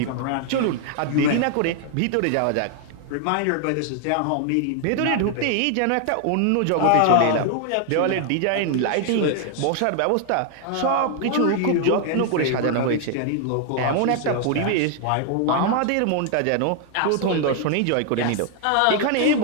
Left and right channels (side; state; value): both; different; correlation 0.00